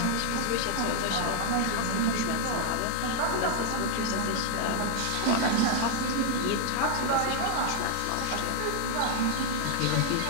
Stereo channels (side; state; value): both; different; correlation 0.00